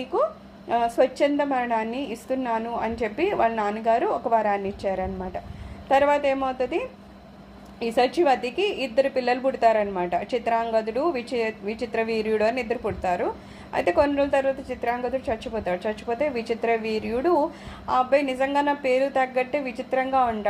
స్వచ్ఛంద మరణాన్ని ఇస్తున్నాను అని చెప్పి వాళ్ళ నాన్నగారు ఒక వరాన్ని ఇచ్చారనమాట. తర్వాత ఏమవుతుంది, ఈ సచివతికి 2 పిల్లలు పుడతారనమాట, చిత్రాంగదుడు విచిత్ర వీర్యుడు అని 2 పుడతారు. అయితే కొన్ని రోజుల తర్వాత చిత్రాంగదుడు చచ్చిపోతే విచిత్ర వీర్యుడు ఆ అబ్బాయి నిజంగా నా పేరు తగ్గట్టే విచిత్రంగా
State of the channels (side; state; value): both; identical; correlation 1.00